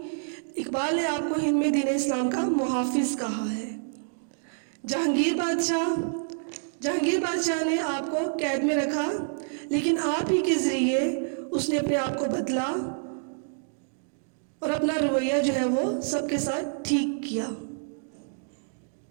اقبال نے آپ کو ہند میں دین اسلام کا محافظ کہا ہے۔ جہانگیر بادشاہ نے آپ کو قید میں رکھا، لیکن آپ ہی کے ذریعے اس نے اپنے آپ کو بدلا اور اپنا رویہ جو ہے وہ سب کے ساتھ ٹھیک کیا۔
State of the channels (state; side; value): silent; left; digital silence